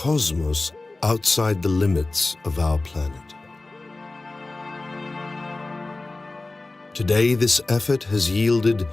outside the limits of our planet. Today, this effort has yielded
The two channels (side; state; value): right; quieter; 3.2 dB